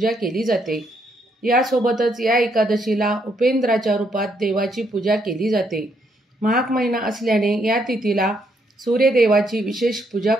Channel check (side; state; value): both; normal; correlation 0.74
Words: केली जाते। यासोबतच या एकादशीला उपेंद्राच्या रूपात देवाची पूजा केली जाते। माघ महिना असल्याने या तिथीला सूर्यदेवाची विशेष पूजा